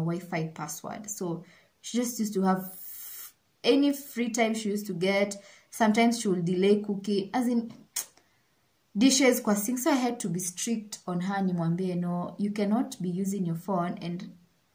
password. So she just used to have any free time she used to get. Sometimes she will delay cooking, as in dishes kwa sink. So I had to be strict on her, nimwambie, no, you cannot be using your phone and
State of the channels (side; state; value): both; identical; correlation 1.00